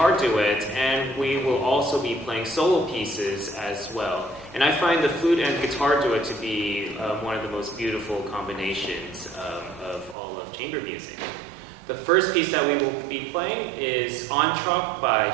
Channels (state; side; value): drops out; left; at 10.2 s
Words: guitar duet, and we will also be playing solo pieces as well. And I find the flute and guitar duet to be one of the most beautiful combinations of all of chamber music. The first piece that we will be playing is Entr'acte by